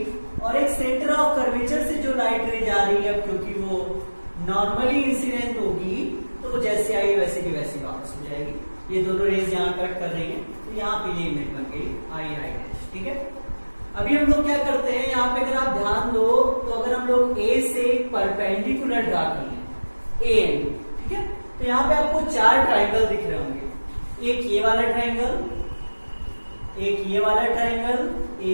और एक सेंटर ऑफ कर्वेचर से जो लाइट रे जा रही है, क्योंकि वो नॉर्मली इंसिडेंट होगी तो वो जैसे आई वैसे की वैसी वापस हो जाएगी। ये दोनों रेज यहाँ कट कर रही है तो यहाँ पे ये इमेज बन गई आई डैश। ठीक है, अभी हम लोग क्या करते हैं, यहाँ पे अगर आप ध्यान दो तो अगर हम लोग ए से परपेंडिकुलर ड्रा कर लें ए एन, ठीक है, तो यहाँ पे आपको चार ट्राइंगल दिख रहे होंगे। एक ये वाला ट्राइंगल, एक ये वाला ट्राइंगल,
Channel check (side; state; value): both; inverted; correlation -1.00